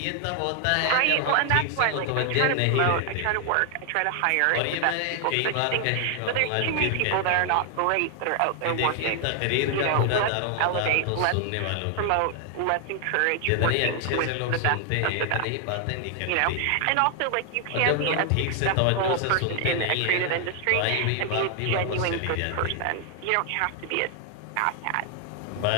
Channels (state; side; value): different; both; correlation 0.00